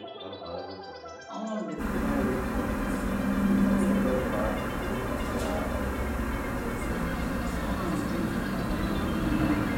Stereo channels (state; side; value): identical; both; correlation 1.00